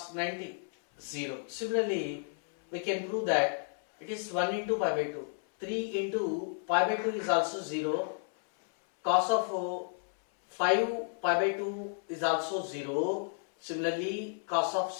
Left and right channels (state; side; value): silent; right; 56 dB below the other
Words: 90, 0. Similarly, we can prove that it is 1 into pi by 2. 3 into pi by 2 is also 0. Cos of 5 pi by 2 is also 0. Similarly, cos of